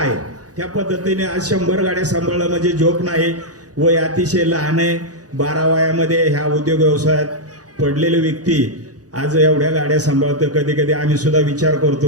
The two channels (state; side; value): late; left; 0.67 ms